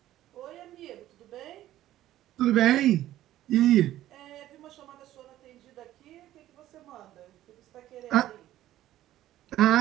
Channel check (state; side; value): quieter; left; 13.7 dB